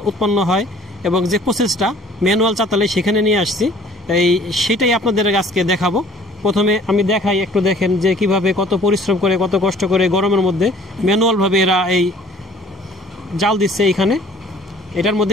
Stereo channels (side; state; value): both; normal; correlation 0.53